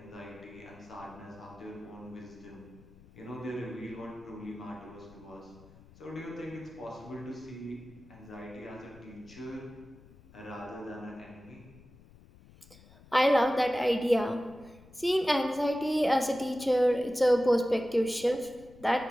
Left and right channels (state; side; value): noise; left; rumble, 23 dB below the sound